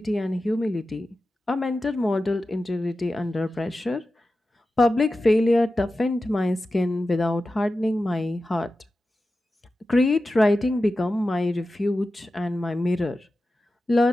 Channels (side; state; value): both; normal; correlation 0.93